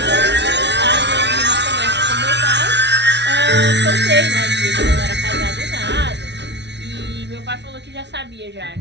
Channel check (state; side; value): late; left; 0.50 ms